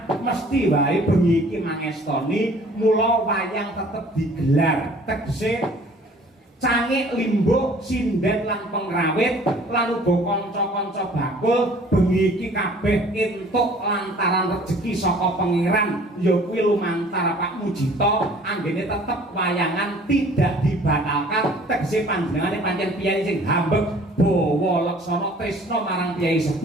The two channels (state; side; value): normal; both; correlation 0.52